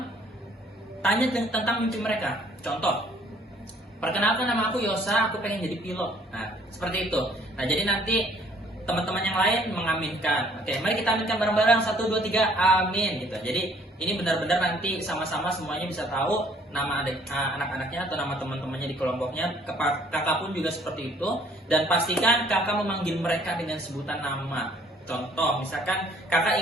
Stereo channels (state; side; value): normal; both; correlation 0.60